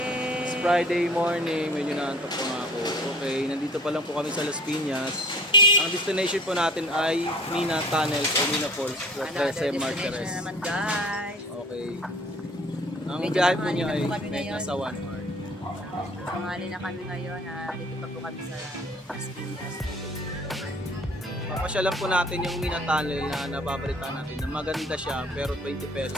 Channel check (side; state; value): both; normal; correlation 0.50